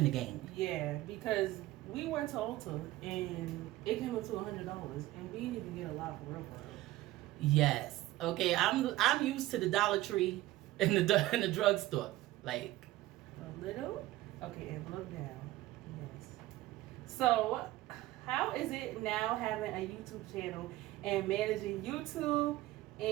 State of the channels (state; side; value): quieter; left; 16.7 dB